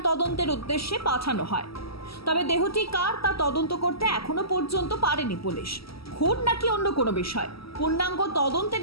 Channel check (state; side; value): late; right; 0.75 ms